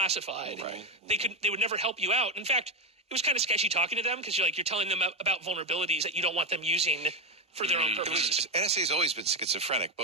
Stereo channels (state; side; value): normal; both; correlation 0.10